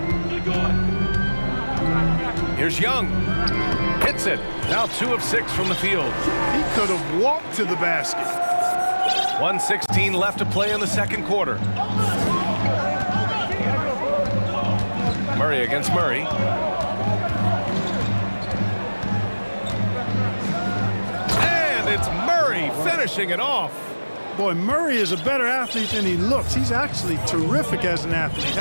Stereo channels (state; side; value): inverted; both; correlation -1.00